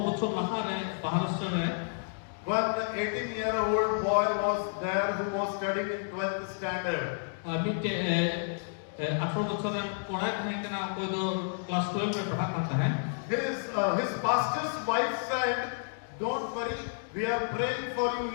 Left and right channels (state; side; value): silent; right; digital silence